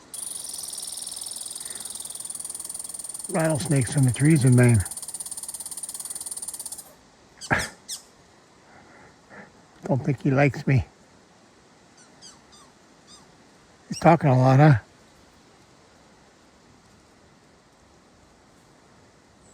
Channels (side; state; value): both; identical; correlation 1.00